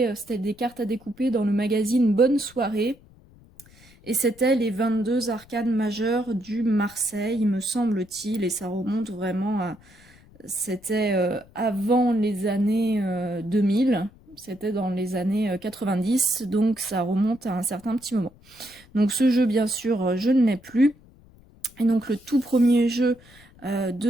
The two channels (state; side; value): noise; left; rumble, 26 dB below the sound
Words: c'était des cartes à découper dans le magazine Bonne Soirée. Et c'était les 22 arcanes majeures du Marseille, me semble-t-il, et ça remonte vraiment à... C'était avant les années 2000, c'était dans les années 90, donc ça remonte à un certain petit moment. Donc ce jeu, bien sûr, je ne l'ai plus. Et donc le tout premier jeu